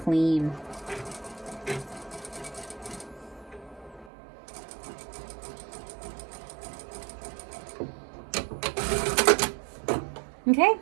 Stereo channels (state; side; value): drops out; left; at 4.1 s